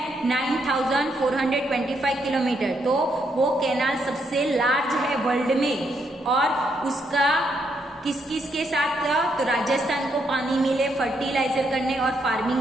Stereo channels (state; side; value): normal; both; correlation 0.76